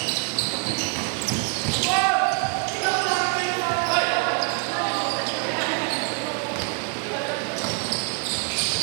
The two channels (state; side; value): quieter; left; 37.1 dB